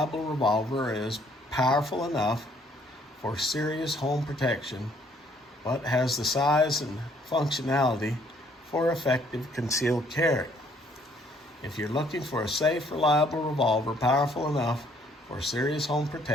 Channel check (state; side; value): normal; both; correlation 0.64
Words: revolver is powerful enough for serious home protection, but has the size and functionality for effective concealed carry. If you're looking for a safe, reliable revolver, powerful enough for serious home